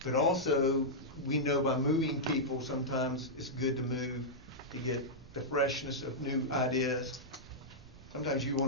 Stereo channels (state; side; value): noise; right; rumble, 21 dB below the sound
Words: But also, we know by moving people, sometimes it's good to move to get the freshness of new ideas. Sometimes you